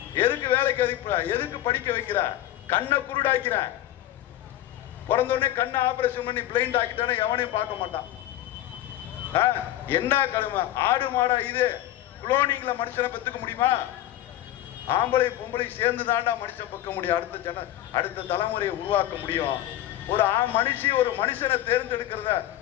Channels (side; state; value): right; quieter; 13.7 dB